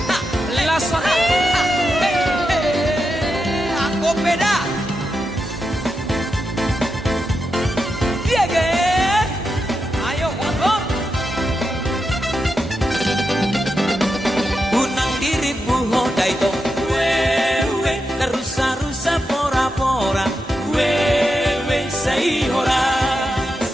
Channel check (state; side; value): normal; both; correlation 0.87